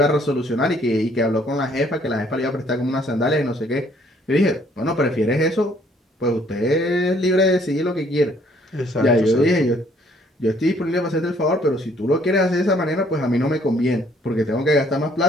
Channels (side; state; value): both; normal; correlation 0.63